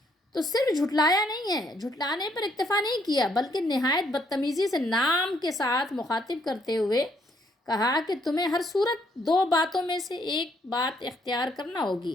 تو صرف جھٹلایا نہیں ہے، جھٹلانے پر اکتفا نہیں کیا، بلکہ نہایت بدتمیزی سے نام کے ساتھ مخاطب کرتے ہوئے کہا کہ تمہیں ہر صورت دو باتوں میں سے ایک بات اختیار کرنا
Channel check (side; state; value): both; normal; correlation 0.70